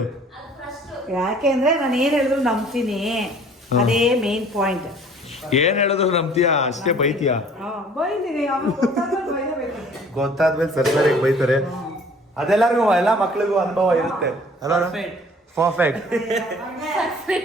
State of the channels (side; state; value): both; normal; correlation 0.53